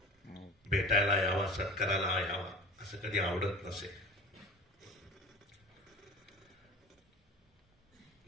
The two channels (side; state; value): both; normal; correlation 0.37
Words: भेटायला यावा, सत्काराला यावा, असं कधी आवडत नसे.